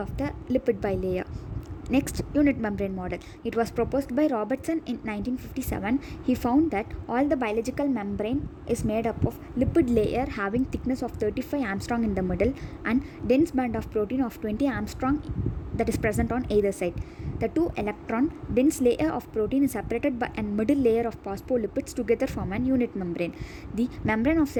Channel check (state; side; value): identical; both; correlation 1.00